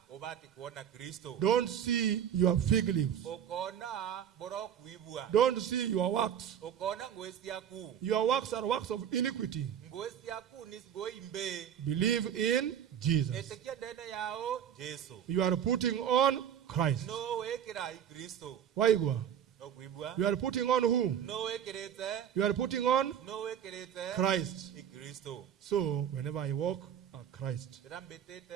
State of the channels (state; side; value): quieter; left; 9.3 dB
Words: Don't see your fig leaves. Don't see your works. Your works are works of iniquity. Believe in Jesus. You are putting on Christ. Why go? You are putting on who? You are putting on Christ. So whenever I walk, Christ.